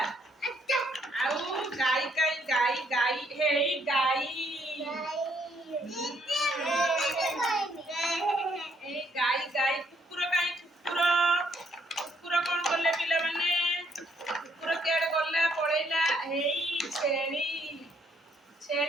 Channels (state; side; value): normal; both; correlation 0.70